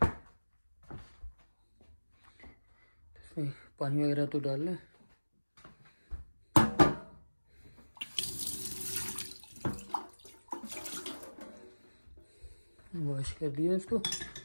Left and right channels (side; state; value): both; inverted; correlation -1.00